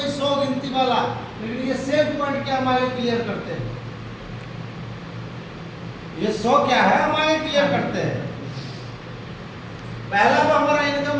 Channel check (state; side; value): identical; both; correlation 1.00